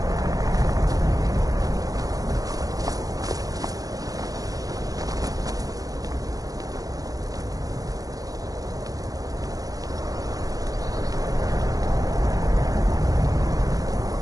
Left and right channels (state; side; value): late; left; 0.17 ms